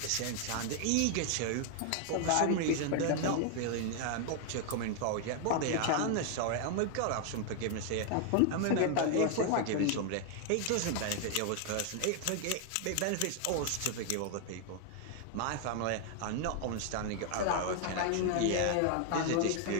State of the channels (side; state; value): both; different; correlation 0.00